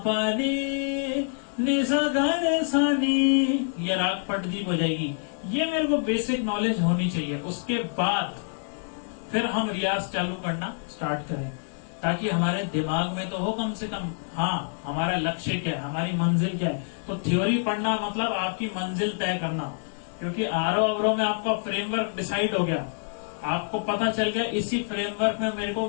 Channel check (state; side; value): silent; right; digital silence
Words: पा नी नि सा ग रे सा नी, ये राग पटदीप हो जाएगी। ये मेरे को बेसिक नॉलेज होनी चाहिए। उसके बाद फिर हम रियाज चालू करना स्टार्ट करें, ताकि हमारे दिमाग में तो हो कम से कम, हाँ हमारा लक्ष्य क्या है, हमारी मंजिल क्या है। तो थ्योरी पढ़ना मतलब आपकी मंजिल तय करना, क्योंकि आरोह अवरोह में आपका फ्रेमवर्क डिसाइड हो गया, आपको पता चल गया इसी फ्रेमवर्क में मेरे को